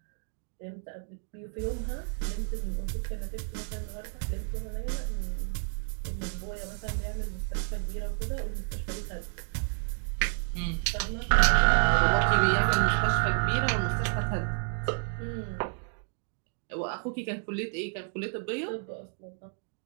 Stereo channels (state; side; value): silent; left; 57 dB below the other